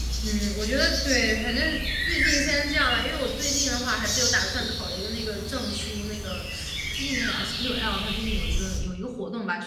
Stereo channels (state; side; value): identical; both; correlation 1.00